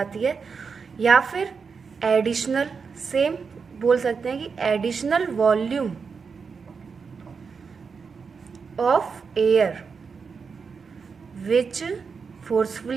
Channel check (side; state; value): left; quieter; 5.5 dB